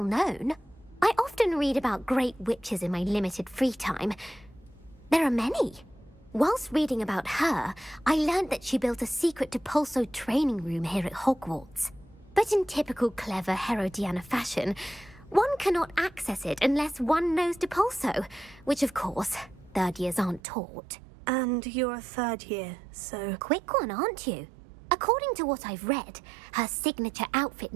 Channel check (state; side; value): drops out; left; at 20.4 s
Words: known. I often read about great witches in my limited free time. There are many. Whilst reading about her, I learned that she built a secret Depulso training room here at Hogwarts. But in typical clever Herodiana fashion, one cannot access it unless one knows Depulso, which of course, 3rd years aren't taught. And you're a 3rd year, so... Quick one, aren't you? According to what I've read, her signature outfit